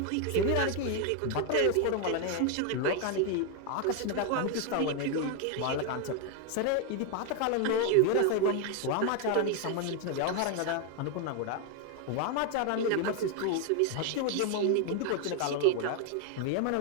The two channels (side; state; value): both; different; correlation 0.01